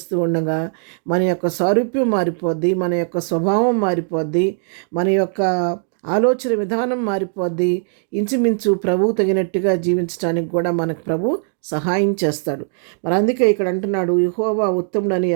ఉండగా మన యొక్క సారూప్యం మారిపోద్ది, మన యొక్క స్వభావం మారిపోద్ది, మన యొక్క ఆలోచన విధానం మారిపోద్ది. ఇంచుమించు ప్రభువు తగినట్టుగా జీవించడానికి కూడా మనకు ప్రభు సహాయం చేస్తాడు. మరి అందుకే ఇక్కడ అంటున్నాడు, యెహోవా ఉత్తముడని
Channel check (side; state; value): left; silent; digital silence